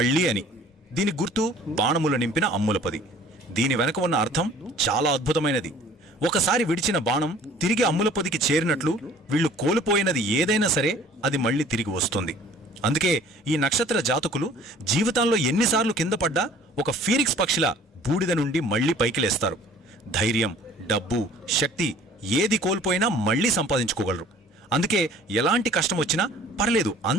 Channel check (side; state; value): both; normal; correlation 0.51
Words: అని. దీని గుర్తు బాణములు నింపిన అమ్ములపది. దీని వెనక ఉన్న అర్థం చాలా అద్భుతమైనది. ఒకసారి విడిచిన బాణం తిరిగి అమ్ములపదికి చేరినట్లు వీళ్ళు కోల్పోయినది ఏదైనా సరే అది మళ్ళీ తిరిగి వస్తుంది. అందుకే ఈ నక్షత్ర జాతకులు జీవితంలో ఎన్నిసార్లు కింద పడ్డా ఒక ఫీనిక్స్ పక్షిలా బూడిద నుండి మళ్లీ పైకి లేస్తారు. ధైర్యం, డబ్బు, శక్తి ఏది కోల్పోయినా మళ్లీ సంపాదించుకోగలరు. అందుకే ఎలాంటి కష్టం వచ్చినా పర్లేదు,